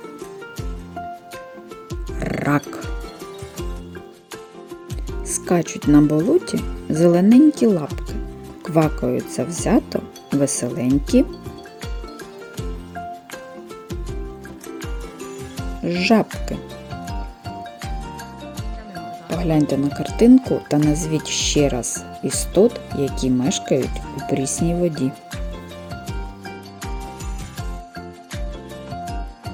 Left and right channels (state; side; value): identical; both; correlation 1.00